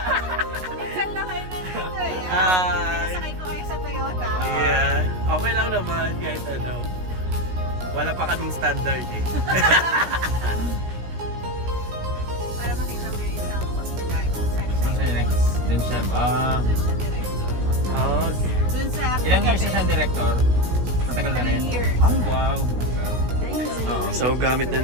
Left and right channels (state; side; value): late; left; 16 ms